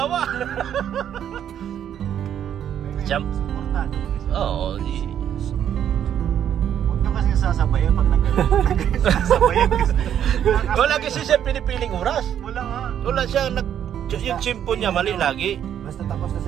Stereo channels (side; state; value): left; quieter; 9.7 dB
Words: Siyam. Supportado. Oo. Huwag nyo kasi sasabayan pag nag-sasabayan kasi. Wala kasi siya pinipiling oras. Wala nga. Wala siya yung chimpo niya mali lagi. Basta tapos na si